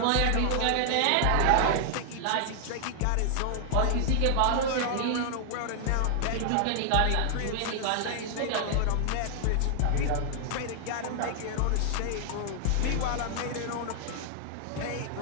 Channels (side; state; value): both; different; correlation 0.00